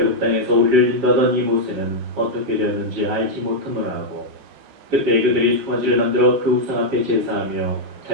땅에서 우리를 인도하던 이 모세는 어떻게 되었는지 알지 못하노라 하고 그때 그들이 송아지를 만들어 그 우상 앞에 제사하며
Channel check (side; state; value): left; late; 7.3 ms